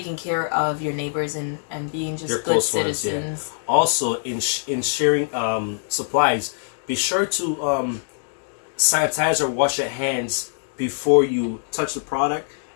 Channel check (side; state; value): right; silent; digital silence